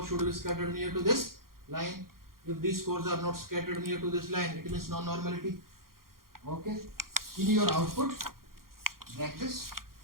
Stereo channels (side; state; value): left; late; 0.92 ms